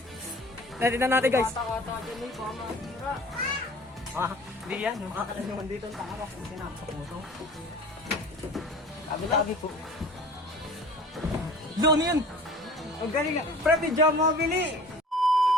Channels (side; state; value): both; normal; correlation 0.44